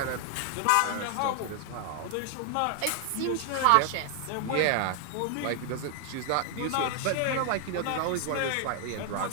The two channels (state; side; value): different; both; correlation 0.00